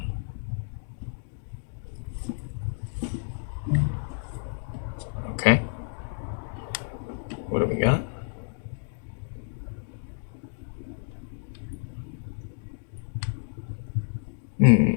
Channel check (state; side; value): silent; right; digital silence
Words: Okay. What do we got?